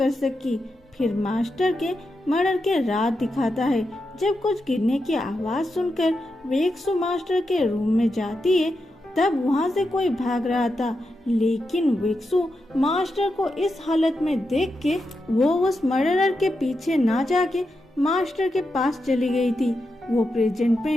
सकी। फिर मास्टर के मर्डर के रात दिखाता है। जब कुछ गिरने की आवाज सुनकर वेक्सू मास्टर के रूम में जाती है, तब वहाँ से कोई भाग रहा था, लेकिन वेक्सू मास्टर को इस हालत में देख के वो उस मर्डरर के पीछे ना जाके मास्टर के पास चली गई थी। वो प्रेजेंट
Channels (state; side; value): normal; both; correlation 0.87